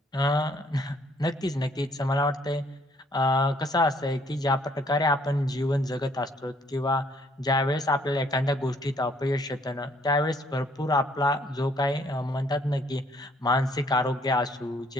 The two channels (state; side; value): normal; both; correlation 0.64